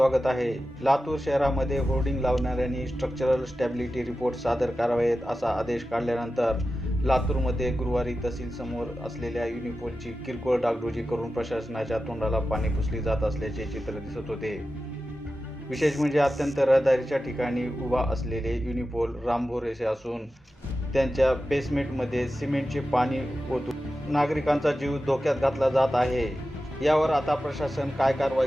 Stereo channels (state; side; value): normal; both; correlation 0.93